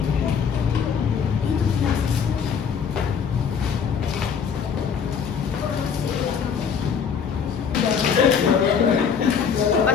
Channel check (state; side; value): quieter; right; 6.8 dB